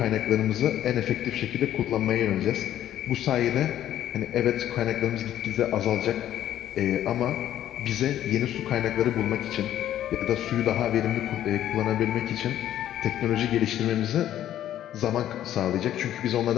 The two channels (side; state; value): right; quieter; 11.8 dB